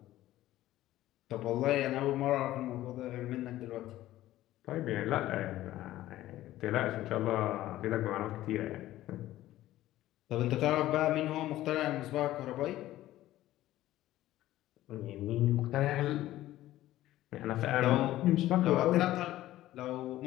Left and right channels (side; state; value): right; quieter; 14.9 dB